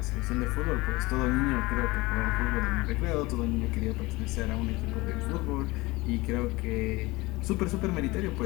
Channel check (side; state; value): right; quieter; 22.0 dB